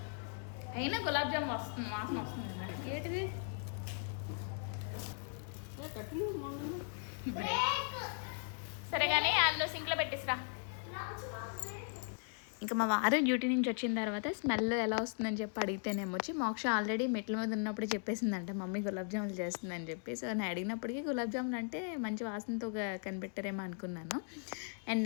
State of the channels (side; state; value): right; silent; 52 dB below the other